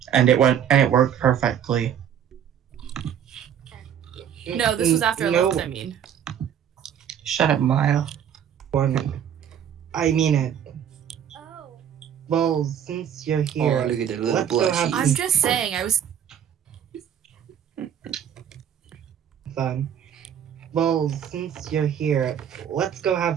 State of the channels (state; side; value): quieter; left; 9.0 dB